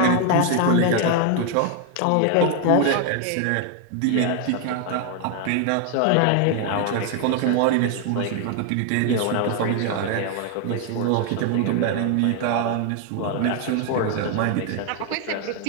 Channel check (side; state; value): both; different; correlation 0.00